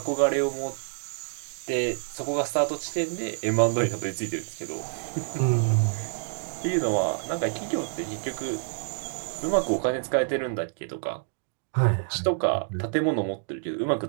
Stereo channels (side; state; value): left; silent; digital silence